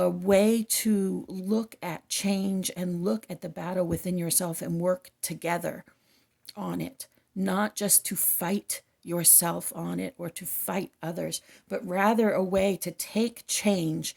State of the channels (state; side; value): identical; both; correlation 1.00